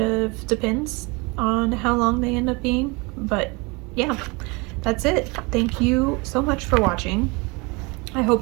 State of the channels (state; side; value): quieter; left; 27.6 dB